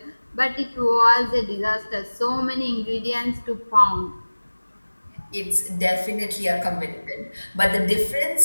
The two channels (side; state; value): both; inverted; correlation -1.00